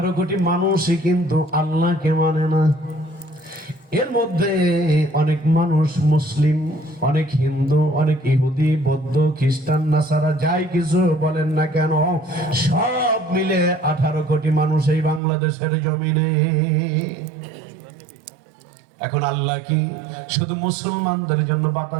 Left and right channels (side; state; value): left; drops out; at 15.2 s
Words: কোটি মানুষই কিন্তু আল্লাহকে মানে না। এর মধ্যে অনেক মানুষ মুসলিম, অনেক হিন্দু, অনেক ইহুদি, বৌদ্ধ, খ্রিস্টান, নাসারা, যাই কিছু বলেন না কেন, সব মিলে 18 কোটি মানুষ এই বাংলাদেশের জমিনে। এখন আল্লাহ কি শুধু মুসলমানদের জন্য